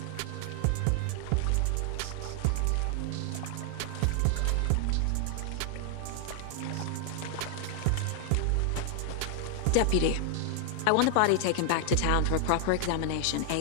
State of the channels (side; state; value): both; different; correlation 0.00